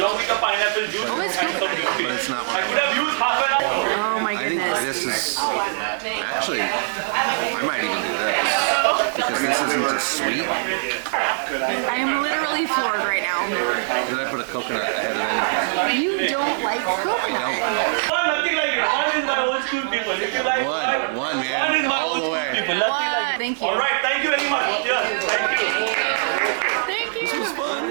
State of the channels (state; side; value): silent; left; digital silence